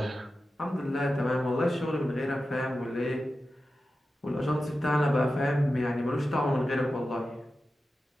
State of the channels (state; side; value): normal; both; correlation 0.92